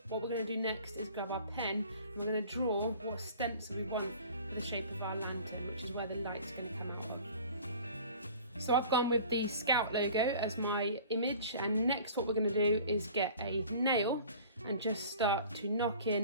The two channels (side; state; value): both; inverted; correlation -0.45